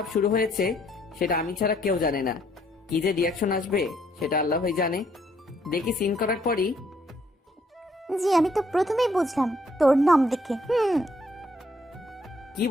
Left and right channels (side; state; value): both; normal; correlation 0.68